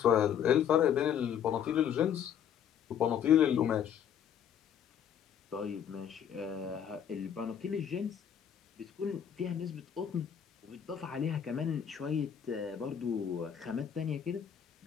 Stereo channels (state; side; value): quieter; right; 8.7 dB